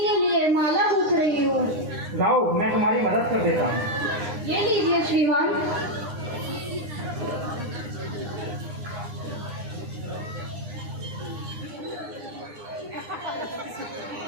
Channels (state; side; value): late; left; 9.7 ms